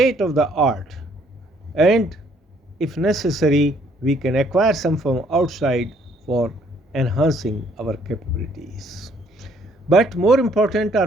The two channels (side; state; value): both; normal; correlation 0.64